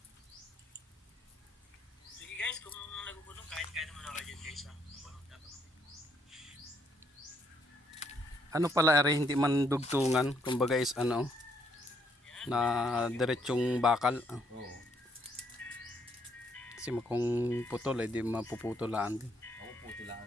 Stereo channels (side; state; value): both; normal; correlation 0.71